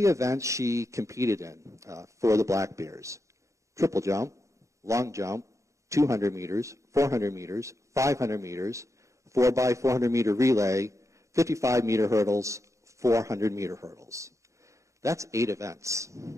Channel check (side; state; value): left; late; 0.15 ms